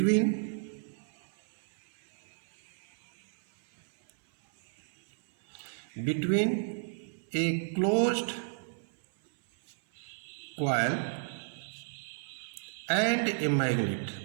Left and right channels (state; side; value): silent; left; 56 dB below the other